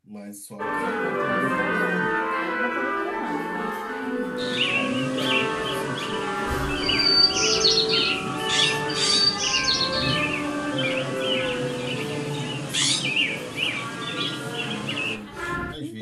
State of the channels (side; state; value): both; identical; correlation 1.00